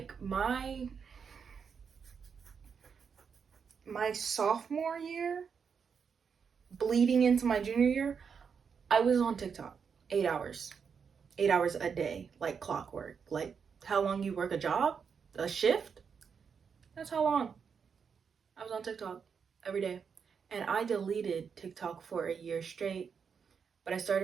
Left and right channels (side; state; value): left; quieter; 6.4 dB